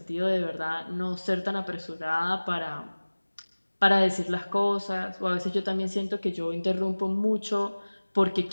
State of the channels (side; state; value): both; inverted; correlation -1.00